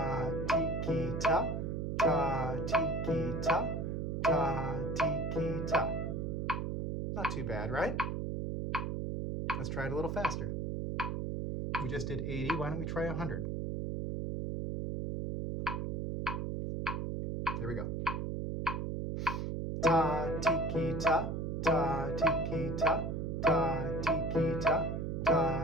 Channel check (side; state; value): right; noise; hum, 2 dB below the sound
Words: ti, ki, ta. Ta, ti, ki, ta. Ta, ti, ki, ta. Not too bad, right? Let's try it a little faster. We just did 80. Why don't we try 100? There we go. Ta, ti, ki, ta. Ta, ti, ki, ta. Ta, ti, ki, ta.